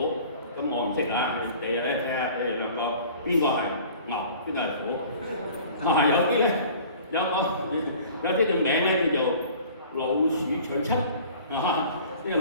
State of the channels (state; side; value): inverted; both; correlation -0.46